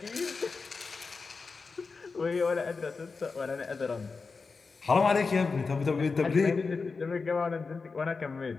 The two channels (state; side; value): quieter; right; 4.5 dB